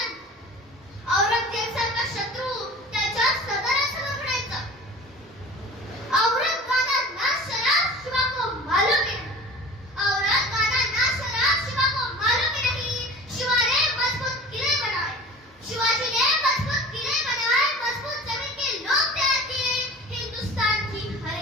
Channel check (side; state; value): both; normal; correlation 0.40